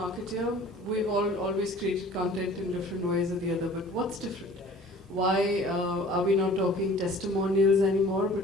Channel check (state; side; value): normal; both; correlation 0.47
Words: we've always created content in different ways or the other, but what's different? Why are we not talking testimonials anymore, but